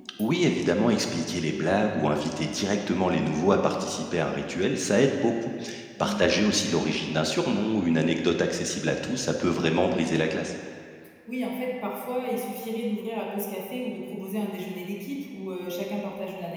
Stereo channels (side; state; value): both; identical; correlation 1.00